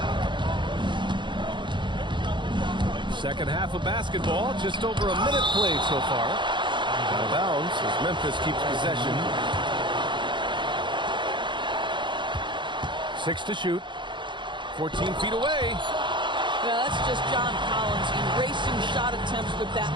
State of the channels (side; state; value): left; late; 0.23 ms